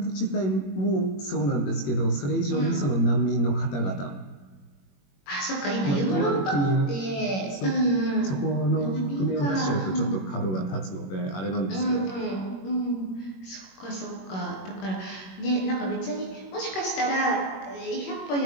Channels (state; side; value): late; right; 21 ms